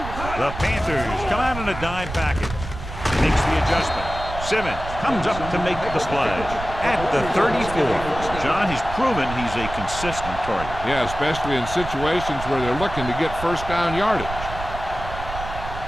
The Panthers come out in a dime package. Makes the adjustment. Simmons comes up to make the splash at the 34. John, he's proven he's a consistent target. Yeah, especially in situations where they're looking to get first down yardage.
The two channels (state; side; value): noise; right; rumble, 9 dB below the sound